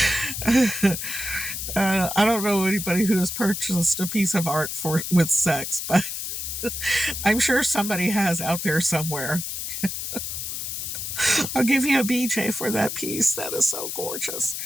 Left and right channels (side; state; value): left; noise; hiss, 5 dB below the sound